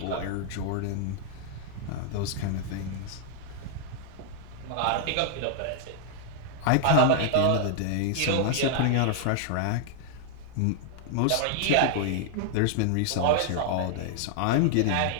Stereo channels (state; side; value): different; both; correlation 0.00